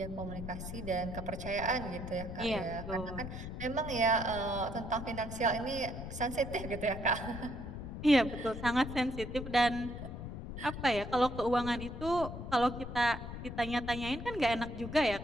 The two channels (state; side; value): noise; left; rumble, 8 dB below the sound